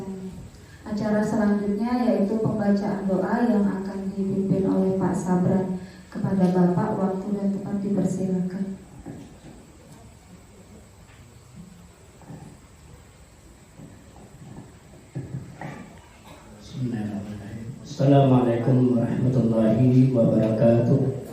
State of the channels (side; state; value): both; identical; correlation 1.00